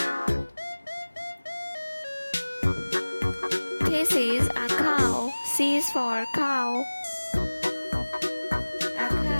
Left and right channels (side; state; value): both; inverted; correlation -1.00